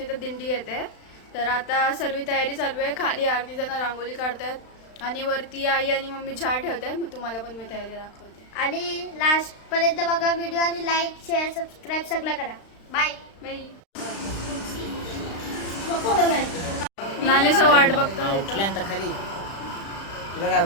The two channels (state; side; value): late; right; 35 ms